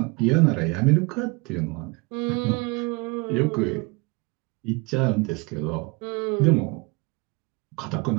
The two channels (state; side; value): quieter; left; 27.2 dB